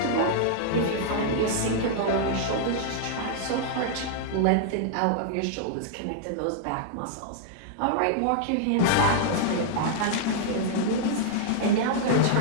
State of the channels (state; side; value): different; both; correlation -0.01